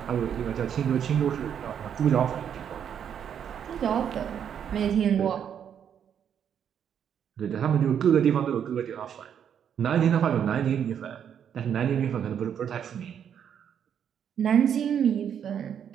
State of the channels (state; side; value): quieter; left; 8.6 dB